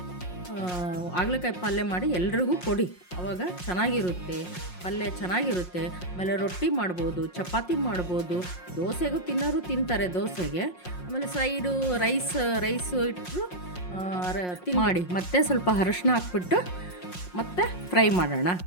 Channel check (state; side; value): late; right; 5.6 ms